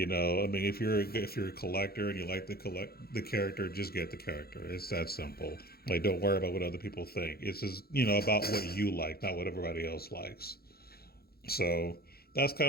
you're a collector and you like the character, just get the character. It's that simple. Like, don't worry about what other people think. It's just, about what you like, not what everybody else likes. So that's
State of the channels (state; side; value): late; right; 0.45 ms